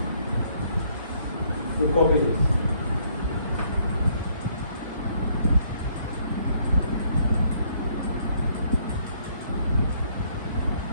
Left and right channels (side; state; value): both; inverted; correlation -0.67